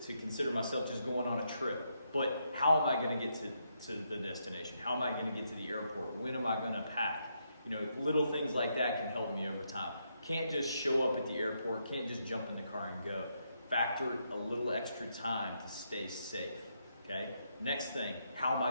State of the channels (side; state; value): both; inverted; correlation -0.79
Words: to consider myself just going on a trip. But how am I going to get to the destination? How am I going to get to the airport? When am I going to pack? You know, little things like that can help me over time. Can't just show up at the airport, can't just jump in the car and go. Factor a little extra time to stay safe, okay? Next thing, how am I